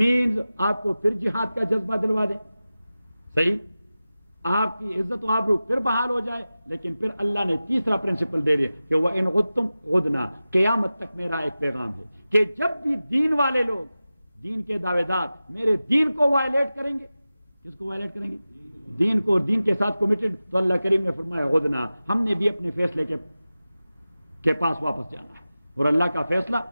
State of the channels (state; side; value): inverted; both; correlation -0.95